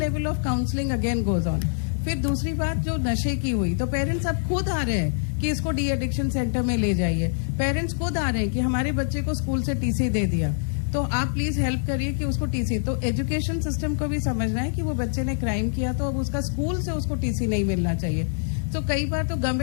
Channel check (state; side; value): silent; right; digital silence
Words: of counselling again goes on. फिर दूसरी बात जो नशे की हुई, तो पेरेंट्स अब खुद आ रहे हैं कि इसको डी एडिक्शन सेंटर में ले जाइए, पेरेंट्स खुद आ रहे हैं कि हमारे बच्चे को स्कूल से टीसी दे दिया, तो आप प्लीज हेल्प करिए कि उसको टीसी। तो एजुकेशन सिस्टम को भी समझना है कि वो बच्चे ने क्राइम किया तो अब उसका स्कूल से उसको टीसी नहीं मिलना चाहिए। तो कई बार तो